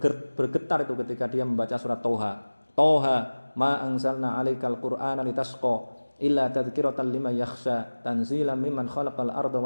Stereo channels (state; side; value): inverted; both; correlation -1.00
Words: itu ketika dia membaca surat Toha ma anzalna 'alaikal qur'ana litasqa illa tadhkiratan liman yakhsha tanzilan mimman khalaqal arda